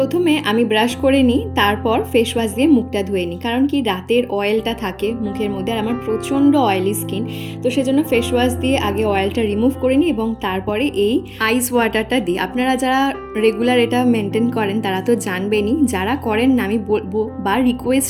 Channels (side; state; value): both; identical; correlation 1.00